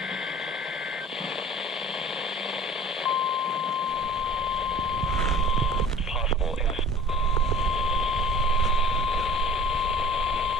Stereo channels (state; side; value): normal; both; correlation 0.44